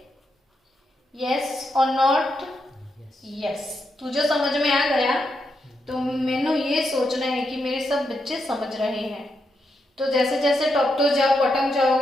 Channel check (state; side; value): normal; both; correlation 0.83